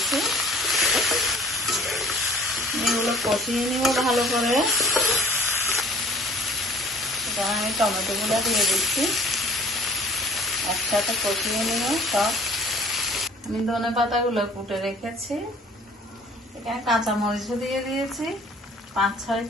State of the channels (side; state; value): both; normal; correlation 0.52